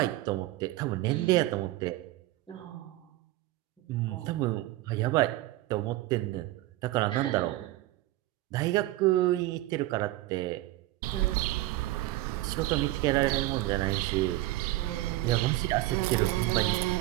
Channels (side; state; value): left; quieter; 17.0 dB